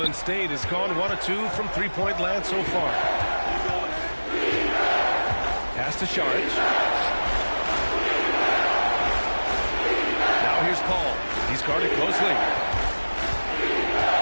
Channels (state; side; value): inverted; both; correlation -1.00